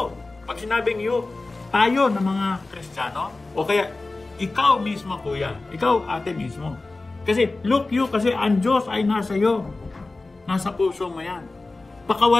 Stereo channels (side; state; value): right; quieter; 3.3 dB